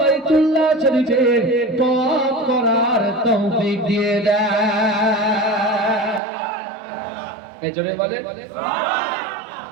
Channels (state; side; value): drops out; left; at 6.2 s